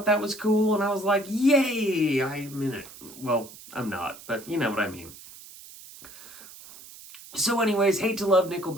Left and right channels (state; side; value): noise; right; hiss, 18 dB below the sound